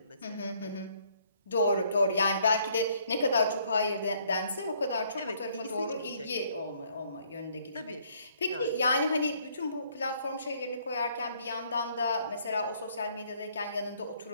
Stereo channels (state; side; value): inverted; both; correlation -0.65